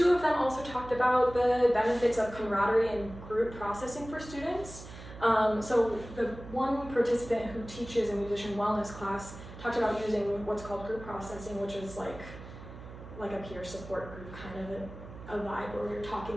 of them also talked about the benefits of camaraderie and group processing for students. So the one participant who teaches a musician wellness class talked about using what's called group processing, which is like a peer support group, kind of a vibe where you're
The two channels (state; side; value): noise; right; hum, 14 dB below the sound